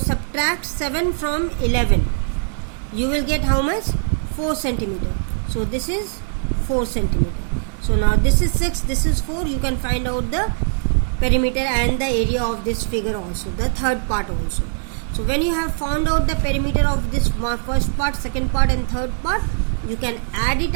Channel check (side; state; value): left; silent; digital silence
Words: 7 from 11. You will get how much? 4 centimeter. So this is 4 centimeter. So now this is 6, this is 4. You can find out the perimeter and the area of this figure also, the third part also. So when you have found out the perimeter of this first part, second part and third part, you can add it